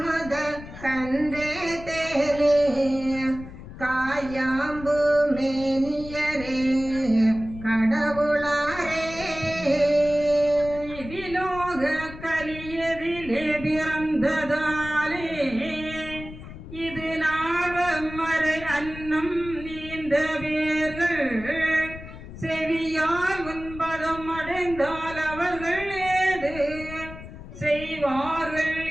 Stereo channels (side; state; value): left; noise; rumble, 14 dB below the sound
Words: மத கன்றே தேனே காயாம்பு மேனியரே கடவுளாரே. விலோக கலியதிலே பிறந்ததாலே இது நாவமறை அன்னம் நீந்த வேர்கள் செவியால் உன்பதம் அடைந்தால் அவர்கள் ஏது செய்வார்கள்